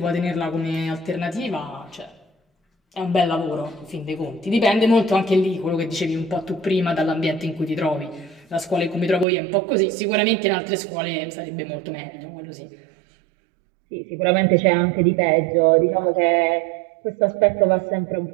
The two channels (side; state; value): left; drops out; at 9.2 s